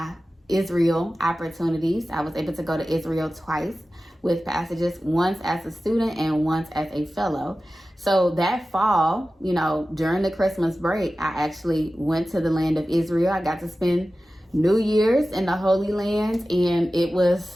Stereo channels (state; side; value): normal; both; correlation 0.95